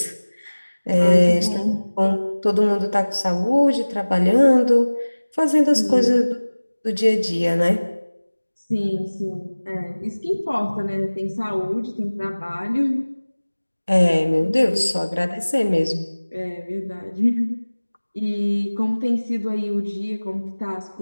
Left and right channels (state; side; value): inverted; both; correlation -1.00